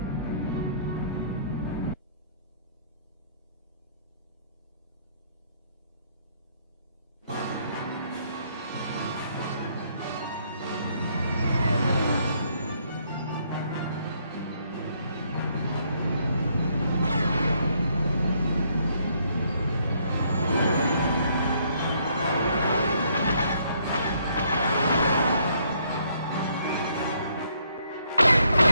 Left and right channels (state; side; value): inverted; both; correlation -0.69